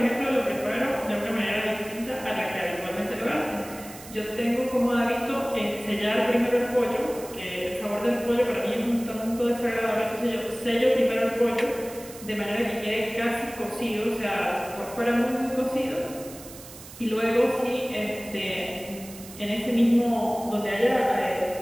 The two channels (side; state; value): right; noise; hiss, 16 dB below the sound